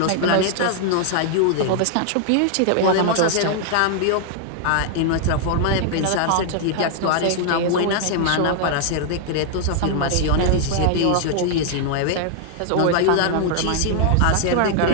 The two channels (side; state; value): both; different; correlation -0.01